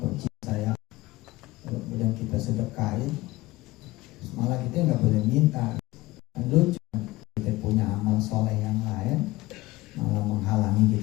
saya, kemudian kita sedekahin, terus malah kita nggak boleh minta. Lucu, kita punya amal soleh yang lain malah menghalangi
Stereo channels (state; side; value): quieter; right; 19.2 dB